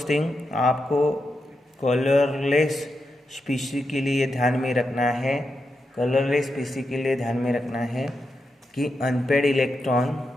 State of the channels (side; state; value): both; normal; correlation 0.87